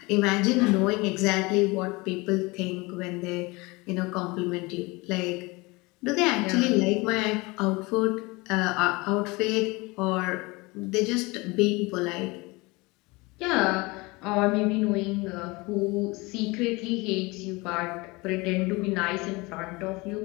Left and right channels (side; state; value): right; quieter; 24.4 dB